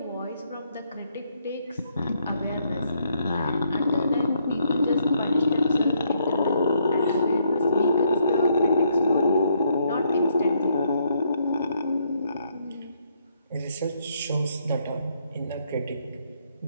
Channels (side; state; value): both; inverted; correlation -0.72